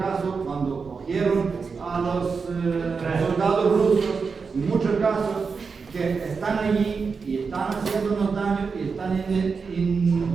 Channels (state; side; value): quieter; left; 5.1 dB